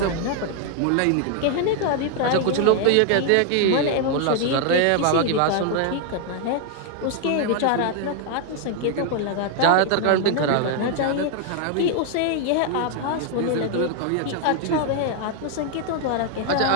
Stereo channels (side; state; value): both; different; correlation 0.00